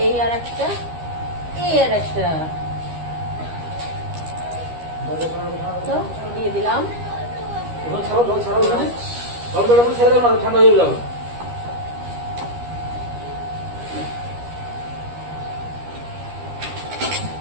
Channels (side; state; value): left; late; 13 ms